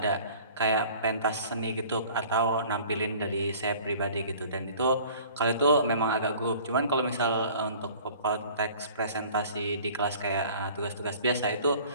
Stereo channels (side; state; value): both; inverted; correlation -0.49